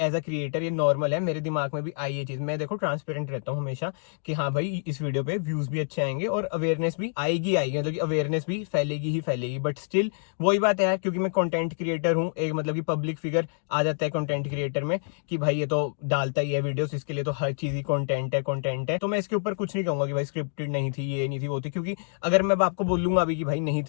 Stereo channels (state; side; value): silent; right; digital silence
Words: अ क्रिएटर ये नॉर्मल है, मेरे दिमाग में भी आई ये चीज। मैं देखो ट्रांसपेरेंट रहता हूँ हमेशा कि हाँ भाई इस वीडियो पे व्यूज भी अच्छे आएंगे और अवेयरनेस भी आएगी आएगी, मतलब कि अवेयरनेस भी फैलेगी ही फैलेगी। बट स्टिल वही बात है यार, क्योंकि मैं कंटेंट क्रिएटर हूँ, एक मतलब कि पब्लिक फिगर आ जाता है कंटेंट क्रिएटर में कि भाई ये तो डालता ही है वीडियोस, इसके लिए तो हर चीज ही कंटेंट है। तो मैं इसके ऊपर कुछ नहीं कहूंगा कि भाई स्क्रिप्टेड नहीं थी, ये नहीं थी, वो थी, क्योंकि अगर मैं आपको बोलूंगा अभी कि भाई नहीं